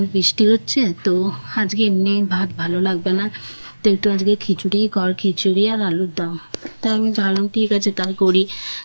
বৃষ্টি হচ্ছে, তো আজকে এমনি ভাত ভালো লাগবে না, তো একটু আজকে খিচুড়িই কর, খিচুড়ি আর আলুর দম। তাই আমি ভাবলাম ঠিক আছে তাই করি,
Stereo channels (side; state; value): both; inverted; correlation -1.00